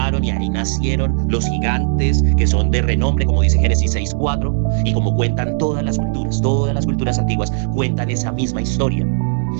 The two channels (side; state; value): left; silent; digital silence